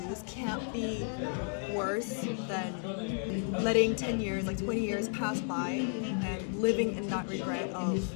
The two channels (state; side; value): silent; right; 56 dB below the other